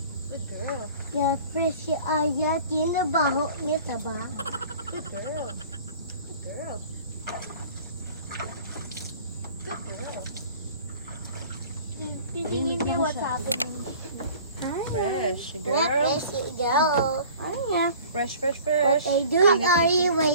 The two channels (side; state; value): both; inverted; correlation -0.46